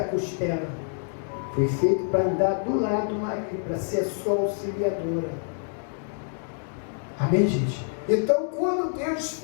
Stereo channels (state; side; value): silent; right; digital silence